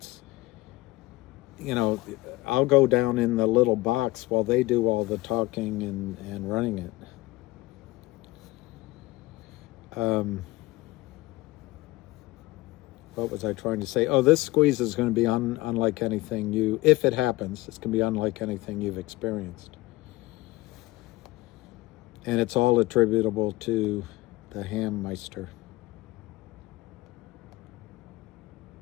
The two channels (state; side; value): quieter; right; 19.8 dB